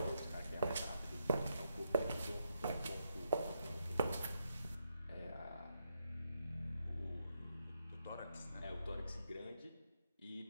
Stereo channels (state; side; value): inverted; both; correlation -0.81